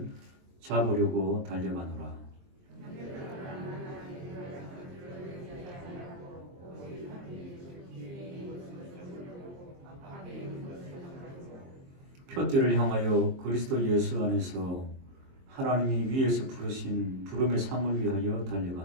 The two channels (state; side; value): late; left; 22 ms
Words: 잡으려고 달려가노라. 표대를 향하여 그리스도 예수 안에서 하나님이 위에서 부르신 부름의 상을 위하여